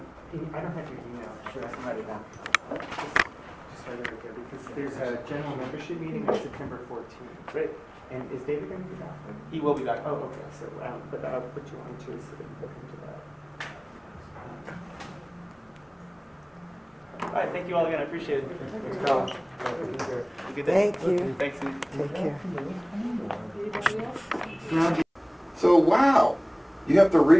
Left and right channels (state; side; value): identical; both; correlation 1.00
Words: don't have your email, should I write it down? Just write it right there, because there's a general membership meeting on September 14th. Great. And is David going to be back? He will be back. Oh, okay, so, but I'll put you on too, so that you look into that. All right, thank you all again, I appreciate it. Thanks, Carl. Have a good day. Thank you. Thanks, Sue. Take care. Anybody else? So wow, you have to